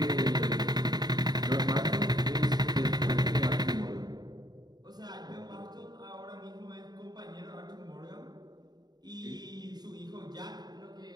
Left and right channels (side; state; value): left; late; 0.20 ms